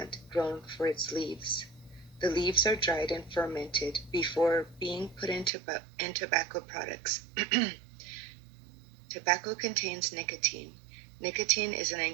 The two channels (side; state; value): left; drops out; at 5.5 s